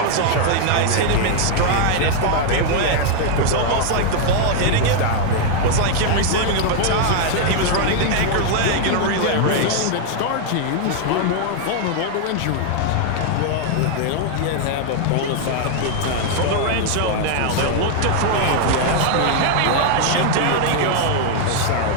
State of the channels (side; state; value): both; different; correlation 0.00